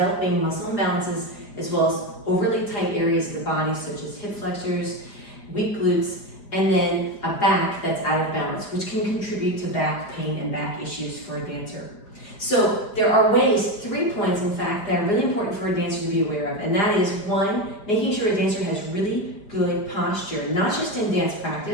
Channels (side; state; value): right; late; 4.9 ms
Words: muscle imbalances as well as overly tight areas of the body such as hip flexors, weak glutes, and then a back that's out of balance, which can contribute to back pain and back issues for a dancer. So there are ways, 3 points in fact, that are really important for a dancer to be aware of. And that is 1, making sure a dancer has really good posture, not just in dance